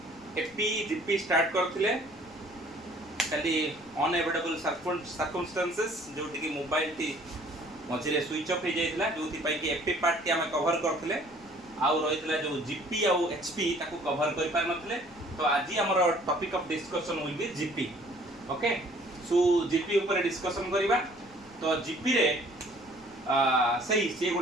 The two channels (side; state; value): left; noise; rumble, 24 dB below the sound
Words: GP start करथिले खाली अनएवोइडेबल सर्कमस्टेंसेस जोटी कि मोबाइल टी मझे स्विच ऑफ हो जाइथिला जोथि पई कि एपी पार्ट टी आम कवर करथिले आउ रहितला जो जीपी आउ एचपी ताको कवर कर पार नथिले। तो आज हमर topic of discussion will be GP. Okay, so GP ऊपर डिस्कशन करबा। तो जीपी रे सही से